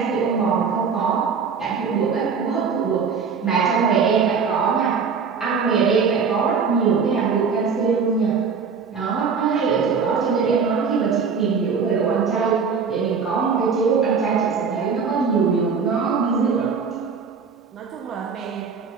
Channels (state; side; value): quieter; left; 5.7 dB